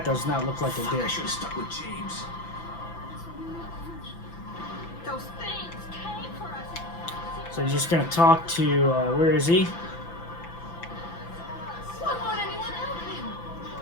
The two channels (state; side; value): late; right; 5.9 ms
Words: Does not look like I did. I should have stuck with James. So you're just gonna talk to where is he? Why won't anyone help him?